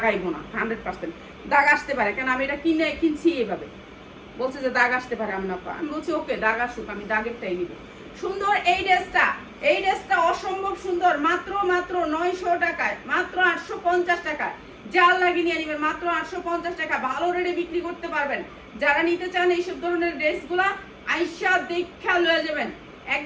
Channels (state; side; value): identical; both; correlation 1.00